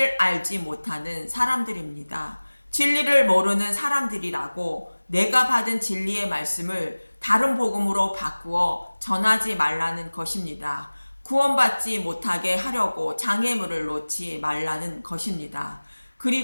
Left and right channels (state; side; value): inverted; both; correlation -1.00